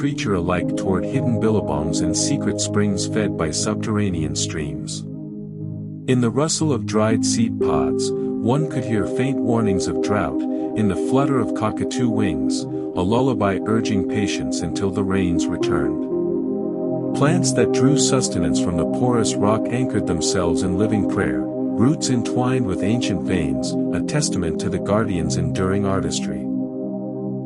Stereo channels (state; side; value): identical; both; correlation 1.00